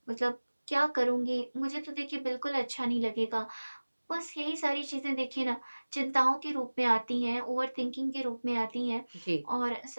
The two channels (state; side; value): inverted; both; correlation -1.00